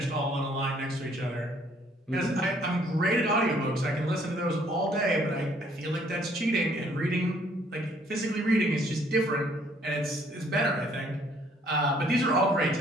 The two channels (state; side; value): normal; both; correlation 0.63